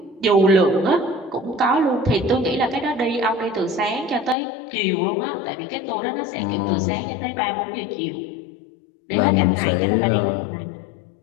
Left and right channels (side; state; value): right; drops out; at 4.4 s